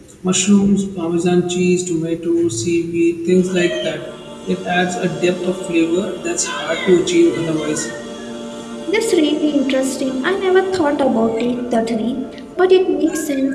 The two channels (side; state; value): both; identical; correlation 1.00